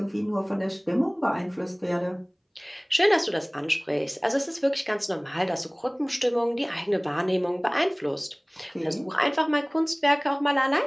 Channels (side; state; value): both; identical; correlation 1.00